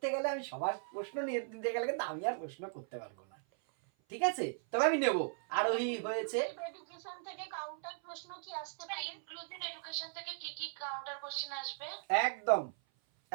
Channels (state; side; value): silent; left; 53 dB below the other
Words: গেলে আমি সবার প্রশ্ন নিয়ে দিতে গেলে কিন্তু আমি আর প্রশ্ন করতে পারবো না, ঠিক আছে, তবে আমি নেব। আরোহী হয়েছে। এডুকেশন থেকে কাউন্টার প্রশ্ন কি আসতে পারে? ইনক্লুসিভ এডুকেশন থেকে কি কি কাউন্টার কোশ্চেন আসবে? একদম